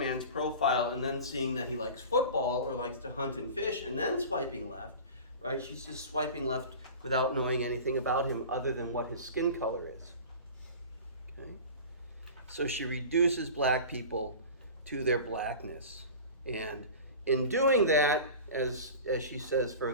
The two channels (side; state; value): both; inverted; correlation -0.35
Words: profile and then seeing that he likes football or likes to hunt and fish and then swiping left, right? She's just swiping left without knowing anything about him other than what his skin color is. Okay? So she reduces black people to their blackness. And in doing that, as she says